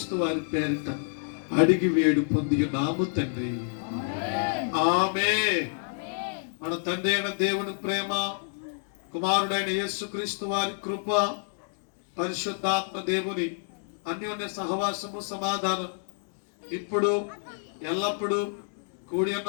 వారి పేరిట అడిగి వేడు పొంది నాము తండ్రి, ఆమేన్. మన తండ్రి అయిన దేవుని ప్రేమ, కుమారుడైన యేసుక్రీస్తు వారి కృప, పరిశుద్ధాత్మ దేవుని అన్యోన్య సహవాసము, సమాధానం ఇప్పుడు ఎల్లప్పుడూ కూడి ఉన్న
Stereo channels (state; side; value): silent; right; digital silence